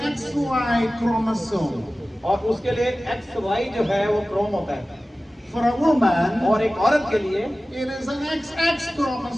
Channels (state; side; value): normal; both; correlation 0.96